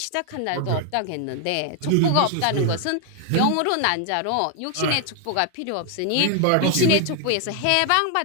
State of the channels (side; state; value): both; different; correlation 0.00